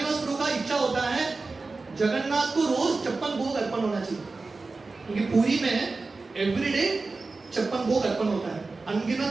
प्रभु का इच्छा होता है जगन्नाथ को रोज 56 भोग अर्पण होना चाहिए, क्योंकि पुरी में एवरीडे 56 भोग अर्पण होता है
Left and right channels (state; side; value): quieter; left; 3.8 dB